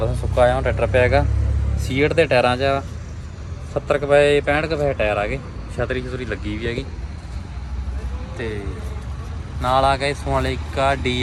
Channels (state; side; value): identical; both; correlation 1.00